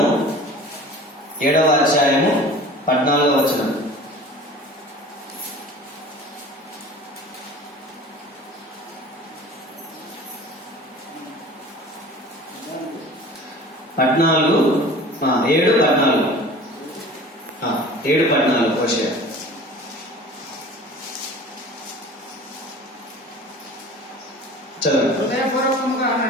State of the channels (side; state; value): both; normal; correlation 0.42